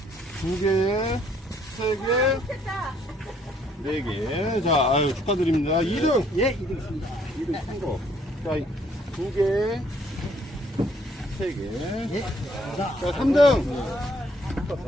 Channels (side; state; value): both; normal; correlation 0.65